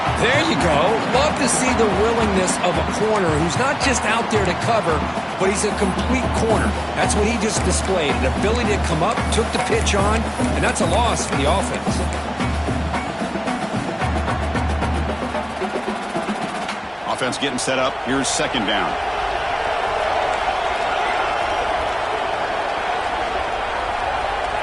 There you go. Love to see the willingness of a corner who's not just out there to cover, but he's a complete corner. That's what he just displayed. An ability to come up, took the pitch on, and that's a loss for the offense. Offense getting set up. Here's second down.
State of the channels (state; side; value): identical; both; correlation 1.00